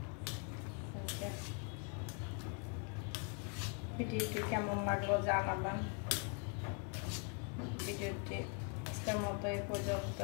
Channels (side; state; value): right; quieter; 38.7 dB